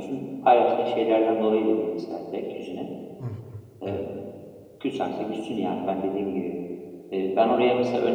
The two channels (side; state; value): both; identical; correlation 1.00